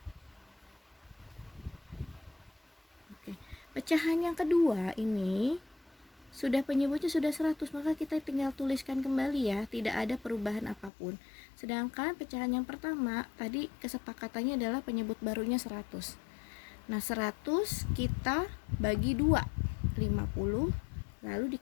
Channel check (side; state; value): right; drops out; at 10.9 s